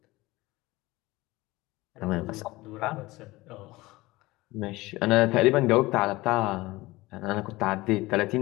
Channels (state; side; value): quieter; right; 20.2 dB